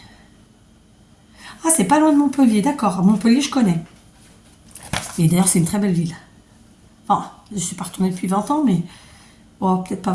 Ah, c'est pas loin de Montpellier, d'accord. Montpellier, je connais. Et d'ailleurs, c'est une très belle ville. Enfin, je suis pas retournée depuis 20 ans, mais... Oh, peut-être pas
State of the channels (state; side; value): identical; both; correlation 1.00